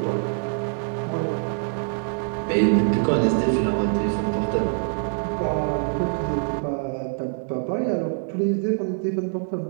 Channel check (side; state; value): left; silent; 62 dB below the other